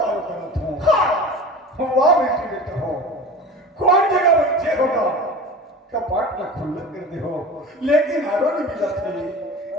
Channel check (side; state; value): both; normal; correlation 0.36